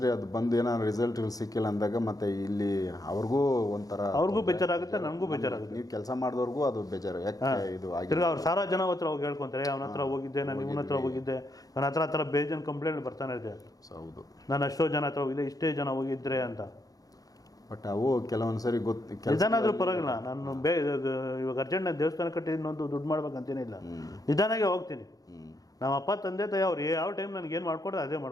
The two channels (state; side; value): late; right; 0.18 ms